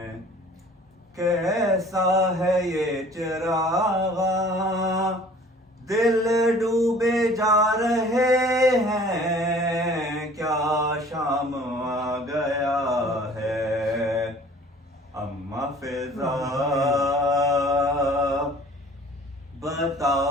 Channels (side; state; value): both; normal; correlation 0.50